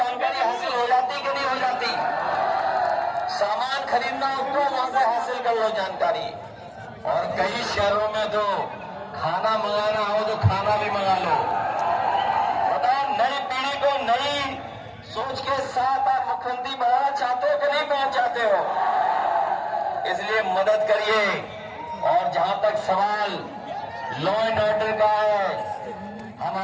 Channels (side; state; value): both; identical; correlation 1.00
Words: हासिल हो जाती कि नहीं हो जाती? सामान खरीदना हो तो वहां से हासिल कर लो जानकारी। और कई शहरों में तो खाना मंगाना हो तो खाना भी मंगा लो। बताओ, नई पीढ़ी को नई सोच के साथ आप मुख्यमंत्री बनाना चाहते हो कि नहीं बनाना चाहते हो? इसलिए मदद करिए। और जहां तक सवाल लॉ एंड ऑर्डर का है, हम